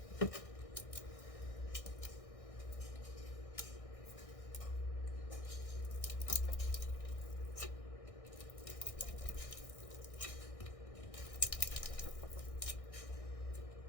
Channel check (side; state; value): right; late; 1.6 ms